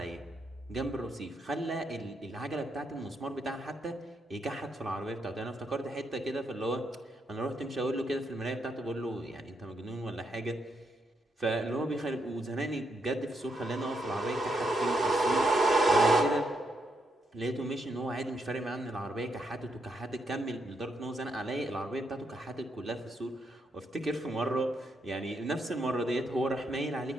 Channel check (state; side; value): normal; both; correlation 0.79